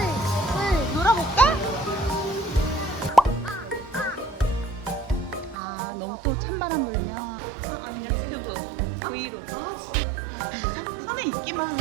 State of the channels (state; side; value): drops out; left; at 5.6 s